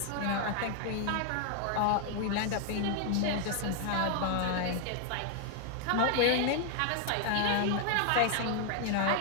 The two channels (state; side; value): different; both; correlation 0.00